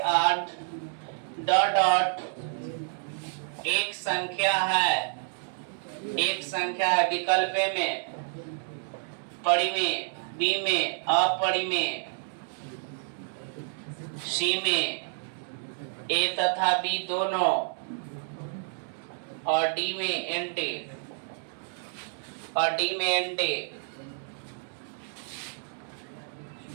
डॉट डॉट एक संख्या है, एक संख्या है विकल्प में, परिमेय, बी में अपरिमेय, सी में ए तथा बी दोनों, और डी में एंटी, और डी में एंटी।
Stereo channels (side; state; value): left; silent; digital silence